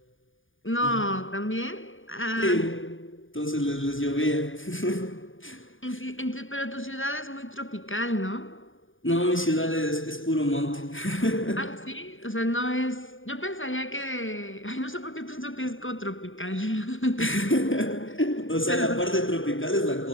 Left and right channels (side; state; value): right; late; 0.58 ms